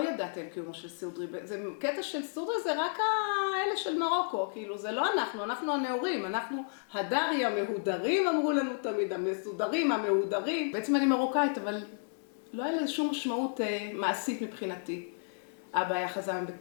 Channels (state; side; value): silent; right; digital silence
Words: ידעתי על קיומו של סודרי. זה קטע של סודרי, זה רק האלה של מרוקו, כאילו, זה לא אנחנו הנאורים, אנחנו הדרי המהודרים, אמרו לנו תמיד, המסודרים, המהודרים. בעצם אני מרוקאית, אבל לא היה לזה שום משמעות מעשית מבחינתי. אבא היה חזן